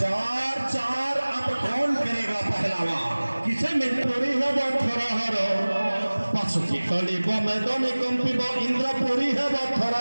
सुखी कलिब मैदानी कंपिब इंद्रपुरी हेब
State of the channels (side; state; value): both; inverted; correlation -1.00